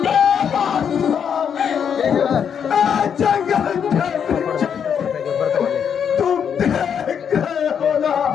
जंगल तुम देख गए हो ना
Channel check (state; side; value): quieter; right; 7.7 dB